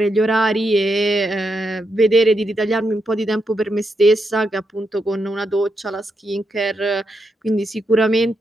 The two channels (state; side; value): normal; both; correlation 0.83